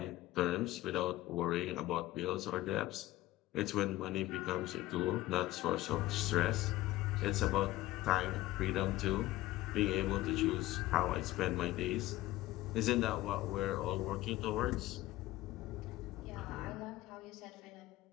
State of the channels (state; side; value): quieter; right; 16.5 dB